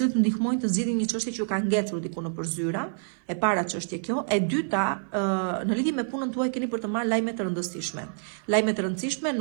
ndihmojnë të zgjidhin një çështje që ju ka ngecur diku nëpër zyra, e para çështje kjo, e dyta, në lidhje me punën tuaj keni për të marrë lajme të rëndësishme. Lajme të rëndësishme,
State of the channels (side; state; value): left; silent; 57 dB below the other